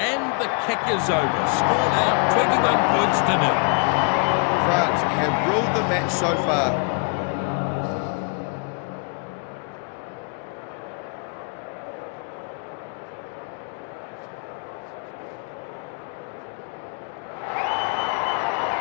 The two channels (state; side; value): quieter; right; 36.5 dB